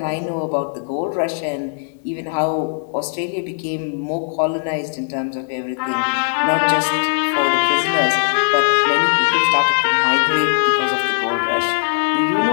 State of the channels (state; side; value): silent; right; 67 dB below the other